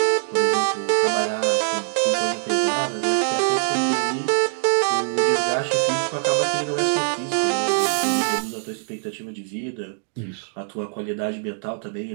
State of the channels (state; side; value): silent; left; digital silence